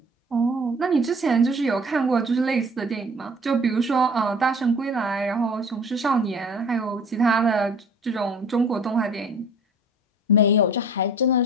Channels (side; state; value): both; normal; correlation 0.47